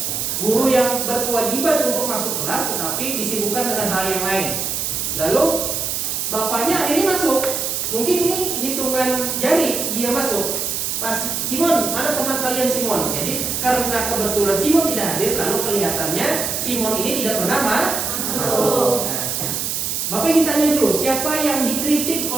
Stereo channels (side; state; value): right; noise; hiss, 1 dB below the sound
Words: Guru yang berkewajiban untuk masuk kelas tetapi disibukkan dengan hal yang lain. Lalu bapaknya akhirnya masuk. Mungkin ini hitungan jari dia masuk. Pas Simon, mana teman kalian Simon? Jadi karena kebetulan Simon tidak hadir, lalu kelihatannya Simon ini tidak pernah masuk. Nah, Bapak ingin tanya dulu, siapa yang dikritik